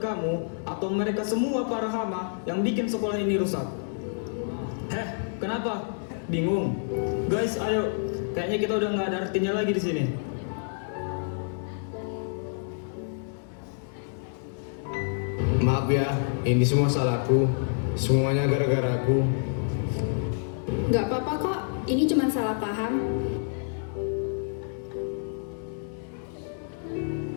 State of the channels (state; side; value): silent; right; digital silence